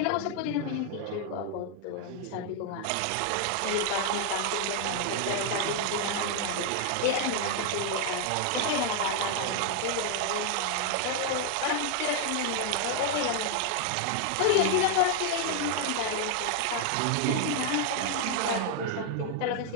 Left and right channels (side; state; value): both; different; correlation 0.00